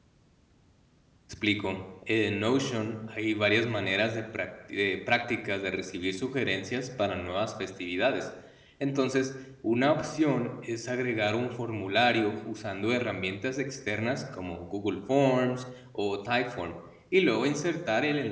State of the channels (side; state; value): both; identical; correlation 1.00